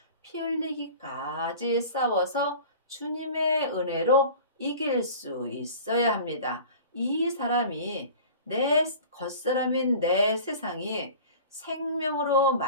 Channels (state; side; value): inverted; both; correlation -0.41